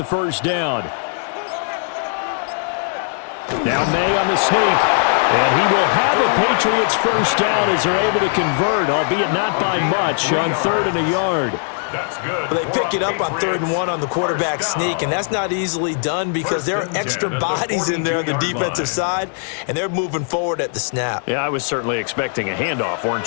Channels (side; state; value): right; silent; digital silence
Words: first down. Now Maye on the sneak. And he will have a Patriots first down as they're able to convert, albeit not by much, on 3rd and a yard. That's good. They pick it up on 3rd and 1 on the quarterback sneak, and that's not easily done because there are extra bodies in there on the defensive side, and they're moving forward at the snap. Yeah, I was certainly expecting a handoff,